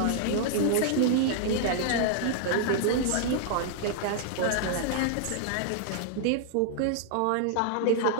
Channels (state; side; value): different; both; correlation -0.01